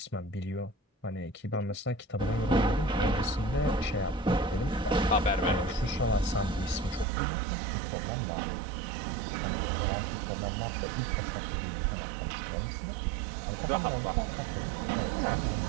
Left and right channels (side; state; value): left; drops out; at 7.1 s